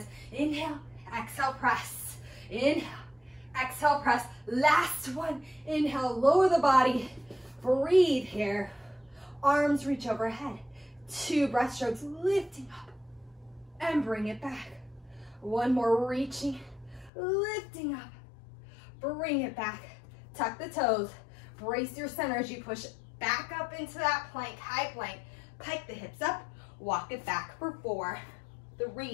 Inhale, exhale, press. Inhale, exhale, press. Last one. Inhale, lower the body. Breathe here. Arms reach overhead. 2 breaststrokes, lifting up and bring it back. 1 more, reaching, lifting up, bring it back. Tuck the toes, brace your center as you push back up into that plank, high plank. Pike the hips up, walk it back for 4,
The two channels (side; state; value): right; drops out; at 17.1 s